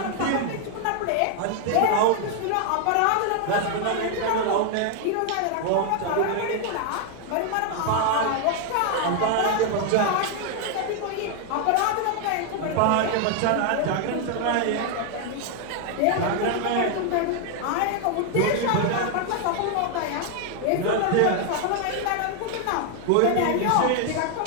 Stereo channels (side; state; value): both; different; correlation 0.00